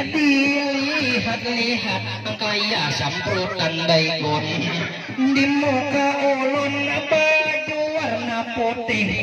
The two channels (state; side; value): identical; both; correlation 1.00